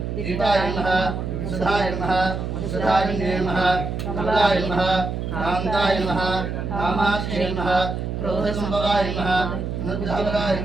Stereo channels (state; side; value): noise; right; hum, 4 dB below the sound